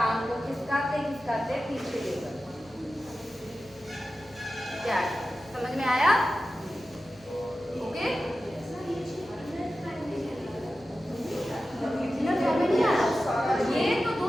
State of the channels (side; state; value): both; normal; correlation 0.93